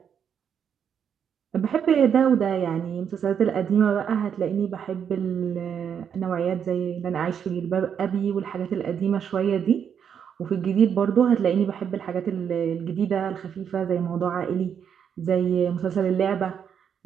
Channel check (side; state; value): left; quieter; 7.9 dB